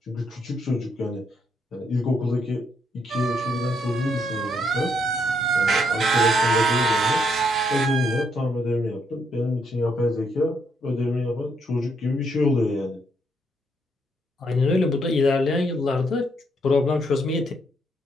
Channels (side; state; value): both; normal; correlation 0.74